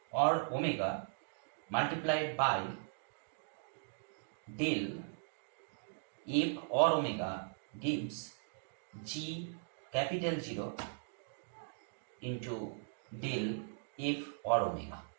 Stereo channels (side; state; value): left; silent; digital silence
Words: or omega multiplied by del f or omega gives g capital 0 into del f or omega.